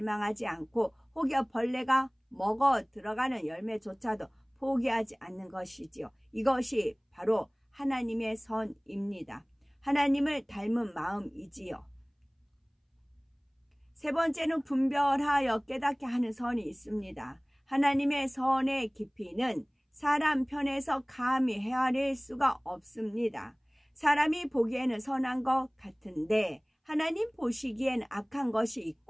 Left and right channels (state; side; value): identical; both; correlation 1.00